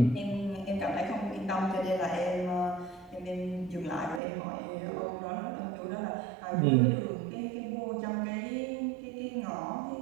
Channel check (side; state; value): left; drops out; at 4.2 s